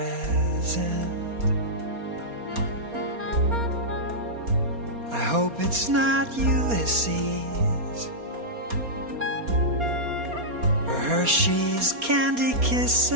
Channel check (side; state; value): left; late; 4.3 ms